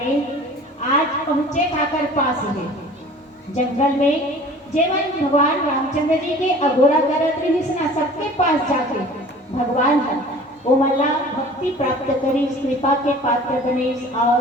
आज पहुंचे काकर पास है जंगल में जेवन भगवान रामचंद्र जी के अघोरा करत रही सबके पास जाके भगवान है वो मल्ला भक्ति प्राप्त करी कृपा के पात्र बने और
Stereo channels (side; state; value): both; normal; correlation 0.45